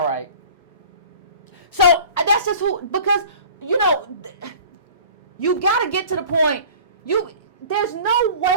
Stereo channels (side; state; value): both; inverted; correlation -0.44